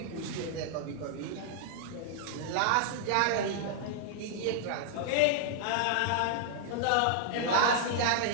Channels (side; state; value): both; different; correlation -0.01